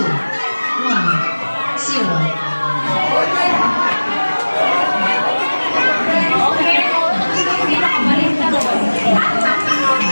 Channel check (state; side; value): inverted; both; correlation -1.00